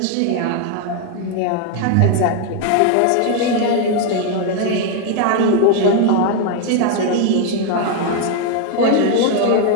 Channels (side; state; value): both; different; correlation 0.00